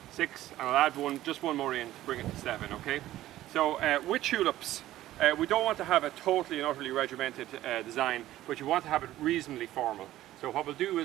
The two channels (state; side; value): quieter; left; 14.5 dB